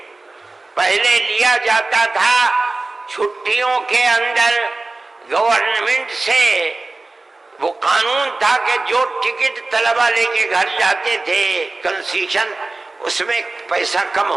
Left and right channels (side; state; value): left; quieter; 3.3 dB